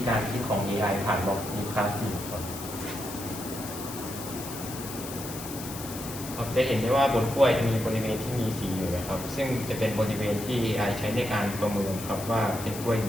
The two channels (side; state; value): left; noise; hiss, 11 dB below the sound